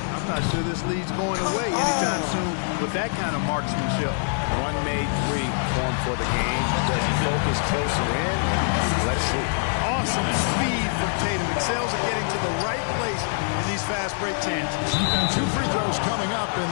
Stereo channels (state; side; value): silent; right; 62 dB below the other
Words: I'm not sure this lead's going away anytime soon with that kind of marksmanship. One made three formed for the game. Does he focus closer in? Let's see. Awesome speed from Tatum. Excels at getting to the right place in these fast break chances. 2 free throws coming up, and